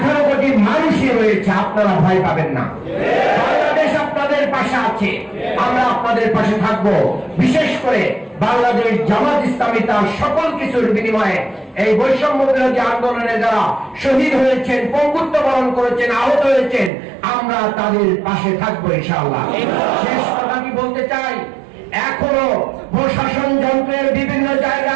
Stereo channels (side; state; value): left; drops out; at 16.9 s